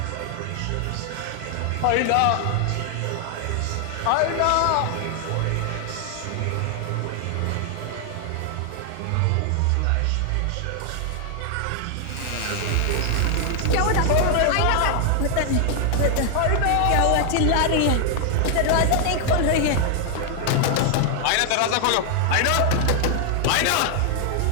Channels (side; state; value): both; different; correlation 0.00